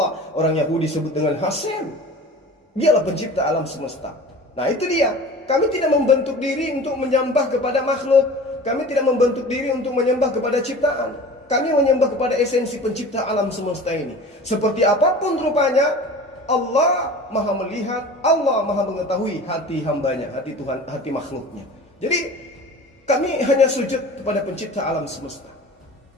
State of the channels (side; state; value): both; normal; correlation 0.39